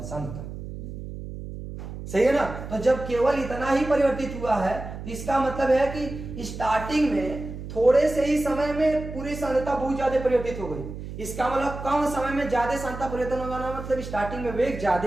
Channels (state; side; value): noise; right; hum, 10 dB below the sound